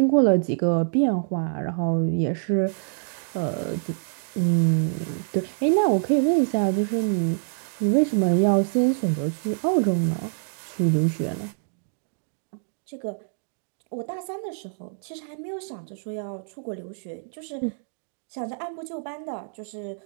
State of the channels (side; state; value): left; silent; digital silence